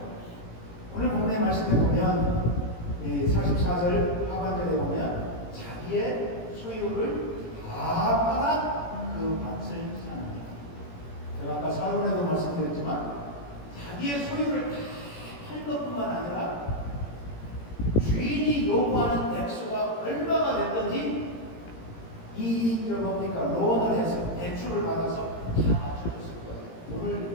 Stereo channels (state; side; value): late; right; 17 ms